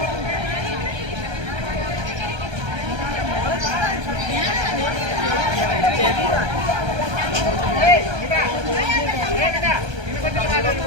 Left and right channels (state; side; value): late; left; 1.3 ms